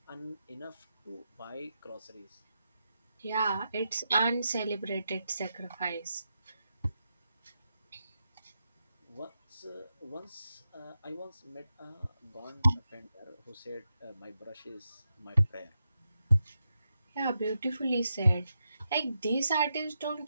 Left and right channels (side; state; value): both; inverted; correlation -0.87